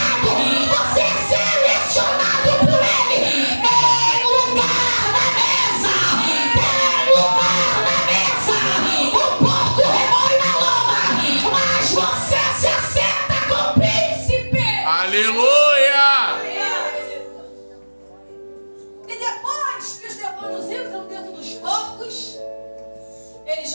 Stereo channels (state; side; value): inverted; both; correlation -1.00